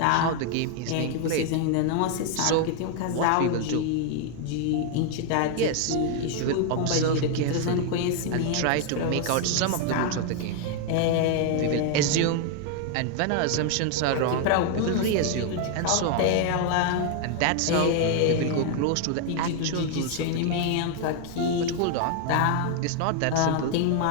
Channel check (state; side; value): different; both; correlation 0.00